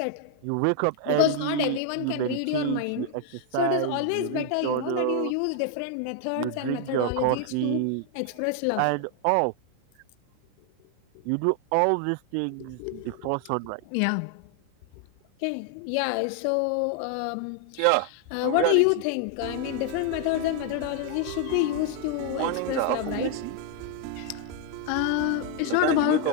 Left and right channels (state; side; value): different; both; correlation 0.00